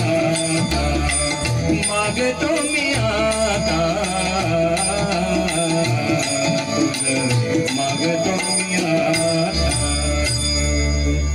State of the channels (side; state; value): both; identical; correlation 1.00